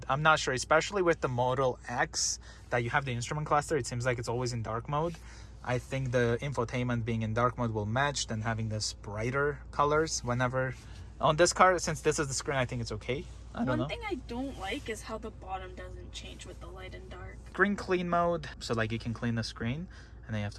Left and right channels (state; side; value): identical; both; correlation 1.00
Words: I'm not sure, especially with the Model X that you have the instrument cluster. It seems like it's always in dark mode. I think the infotainment being in dark mode will match than having this brighter colors whenever. On this car, since this is the screen, I think it's okay. I don't know. One thing I don't like is how the bottom doesn't change with the light and dark. Screen clean mode. So like you can clean the screen. And then you have